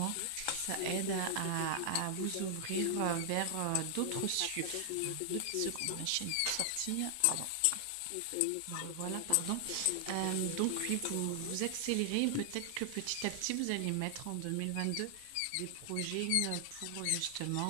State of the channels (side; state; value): both; different; correlation 0.00